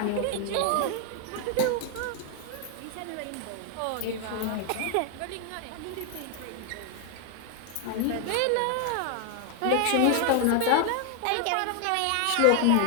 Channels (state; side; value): different; both; correlation 0.00